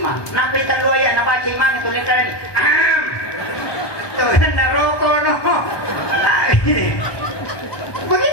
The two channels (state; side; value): late; right; 1.2 ms